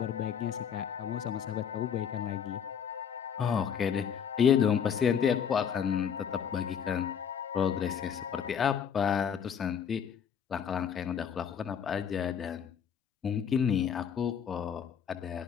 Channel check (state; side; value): quieter; right; 7.8 dB